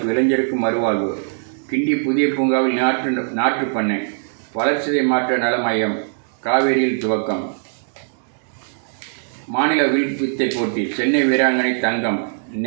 இளைஞருக்கு மறுவாழ்வு. கிண்டி புதிய பூங்காவில் நாற்று பண்ணை, வளர்ச்சிதை மாற்ற நல மையம் காவேரியில் துவக்கம். மாநில வில் வித்தை போட்டி, சென்னை வீராங்கனை தங்கம்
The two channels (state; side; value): silent; left; digital silence